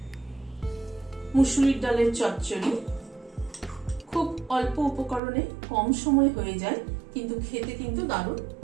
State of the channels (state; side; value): drops out; left; at 5.2 s